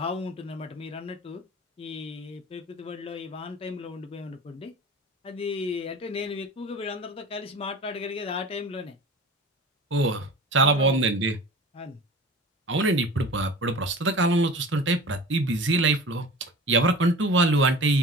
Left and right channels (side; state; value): both; normal; correlation 0.37